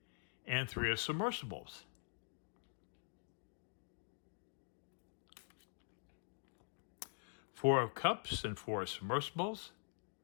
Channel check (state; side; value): silent; right; digital silence